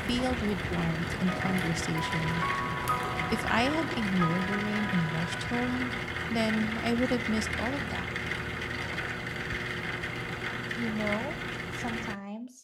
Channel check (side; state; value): both; identical; correlation 1.00